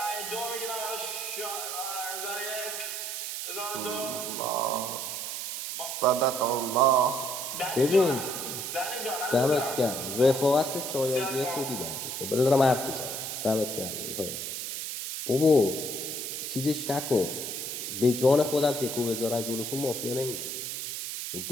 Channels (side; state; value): right; noise; hiss, 5 dB below the sound